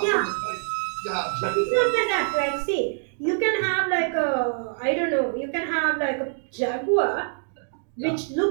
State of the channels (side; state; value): left; silent; 59 dB below the other